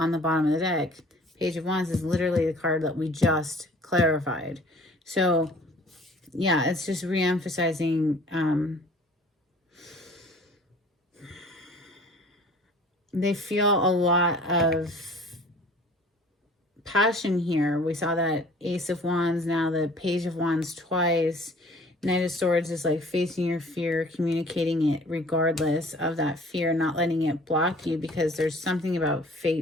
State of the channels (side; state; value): both; normal; correlation 0.50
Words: the bottom of the deck. Page of Wands is literally the card that we just clarified. So yeah, it's just re-emphasizing they feel a lot of passion here. We saw that Ace of Wands, now the Page of Wands twice. Knight of Swords is like facing your fear, communicating it regardless of that fear, not letting it block you, because there's something about